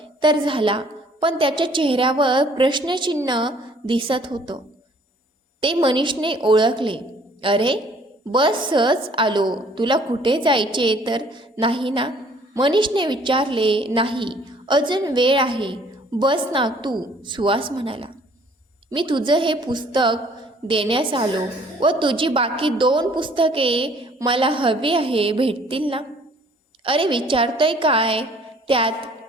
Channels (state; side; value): normal; both; correlation 0.58